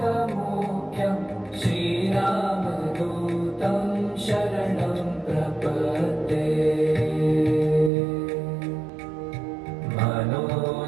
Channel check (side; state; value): left; drops out; at 7.9 s